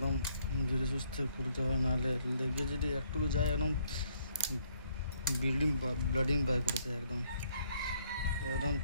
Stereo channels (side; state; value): both; inverted; correlation -0.68